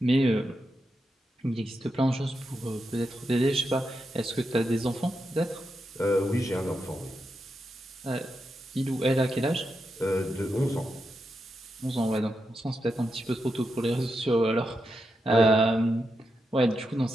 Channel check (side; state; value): both; normal; correlation 0.86